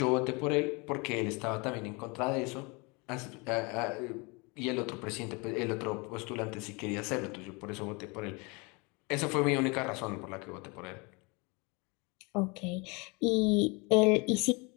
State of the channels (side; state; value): right; quieter; 28.9 dB